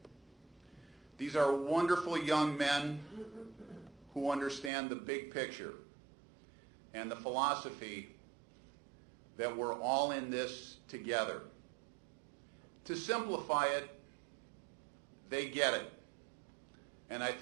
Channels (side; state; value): left; drops out; at 4.7 s